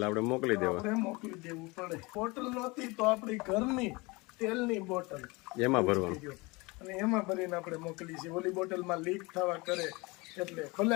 આપણે મોકલી દેવા. આપણે મોકલી દેવું પડે. બોટલ નહોતી તો આપણી ઘરની તેલની બોટલ એમાં ભરવાનું, અને એમાં ભરીને આપણે મોકલી છે. ઓલી બોટલમાં લીક થવા કરે એટલે ભલે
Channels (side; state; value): right; quieter; 25.0 dB